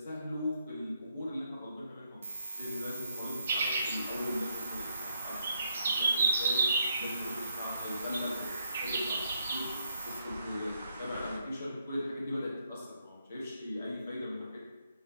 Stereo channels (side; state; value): both; inverted; correlation -0.77